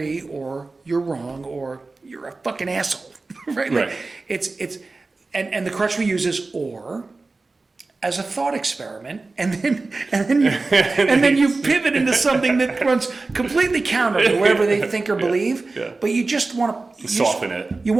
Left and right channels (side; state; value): left; quieter; 3.6 dB